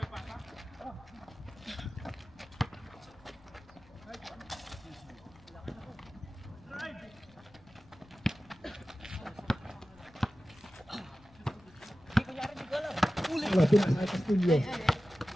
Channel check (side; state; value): left; noise; rumble, 25 dB below the sound